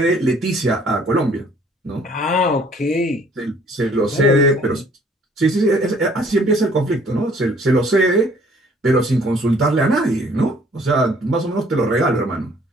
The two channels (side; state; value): both; normal; correlation 0.59